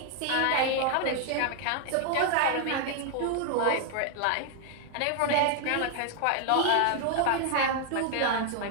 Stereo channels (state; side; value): different; both; correlation 0.00